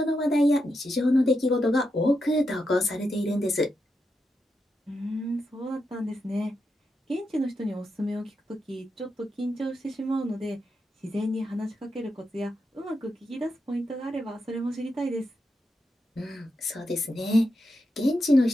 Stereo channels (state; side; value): normal; both; correlation 0.85